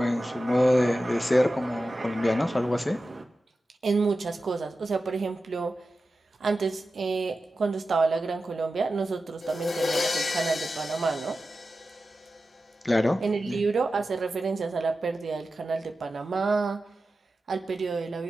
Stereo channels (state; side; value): normal; both; correlation 0.93